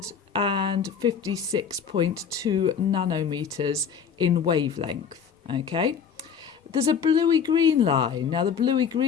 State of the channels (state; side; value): quieter; right; 7.0 dB